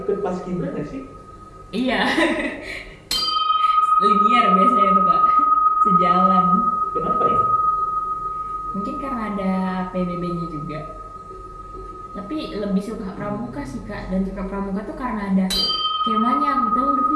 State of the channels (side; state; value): both; identical; correlation 1.00